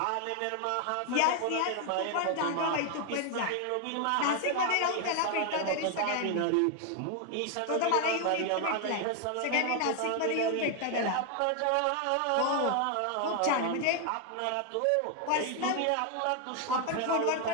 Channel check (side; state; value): both; different; correlation 0.01